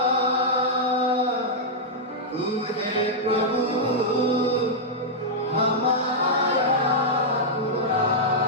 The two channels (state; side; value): normal; both; correlation -0.06